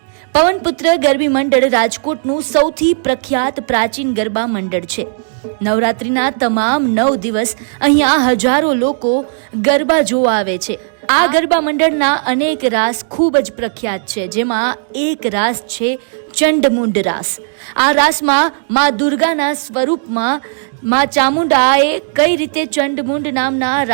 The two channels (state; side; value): silent; left; digital silence